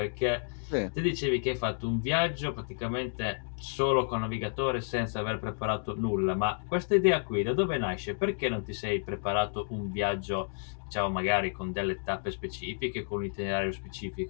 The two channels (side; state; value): right; silent; digital silence